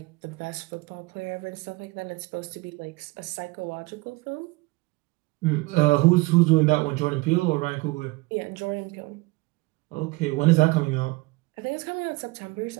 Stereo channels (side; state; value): left; quieter; 23.3 dB